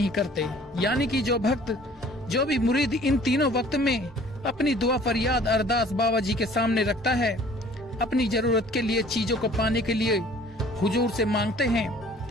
करते। यानी कि जो भक्त, जो भी मुरीद इन तीनों वक्त में अपनी दुआ फरियाद अरदास बाबा जी के सामने रखता है, अपनी जरूरत के लिए चीजों को पाने के लिए हुजूर से मांगते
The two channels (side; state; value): both; normal; correlation 0.52